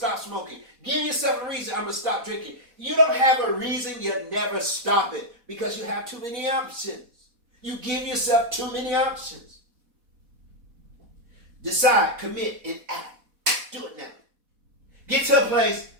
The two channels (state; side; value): late; left; 4.1 ms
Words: smoking. Give yourself a reason, I'm going to stop drinking. You don't have a reason, you never stop it. Because you have too many options. You give yourself too many options. Decide, commit, and act. Do it now. Get to a place,